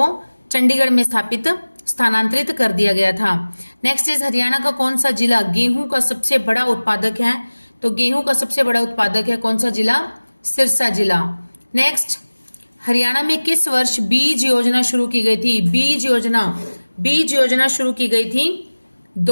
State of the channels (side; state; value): both; inverted; correlation -1.00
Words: चंडीगढ़ में स्थानांतरित कर दिया गया था। नेक्स्ट इज हरियाणा का कौन सा जिला गेहूं का सबसे बड़ा उत्पादक है? तो गेहूं का सबसे बड़ा उत्पादक है कौन सा जिला? सिरसा जिला। नेक्स्ट, हरियाणा में किस वर्ष बीज योजना शुरू की गई थी? बीज योजना शुरू की गई थी